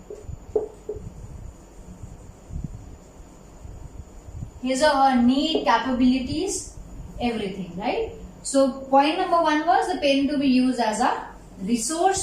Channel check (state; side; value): identical; both; correlation 1.00